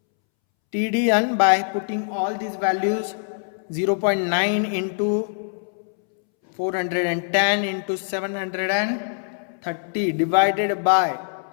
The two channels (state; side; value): silent; right; 63 dB below the other